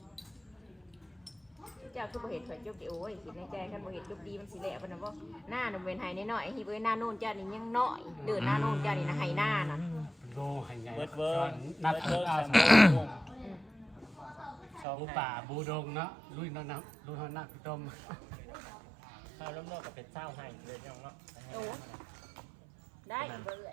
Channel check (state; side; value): drops out; left; at 14.9 s